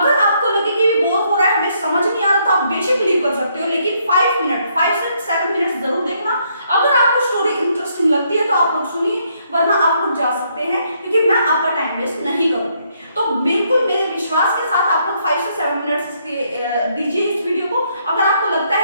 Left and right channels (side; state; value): both; inverted; correlation -0.72